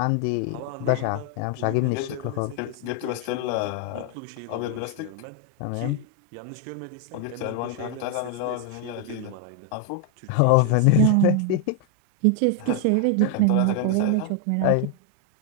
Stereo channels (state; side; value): different; both; correlation 0.01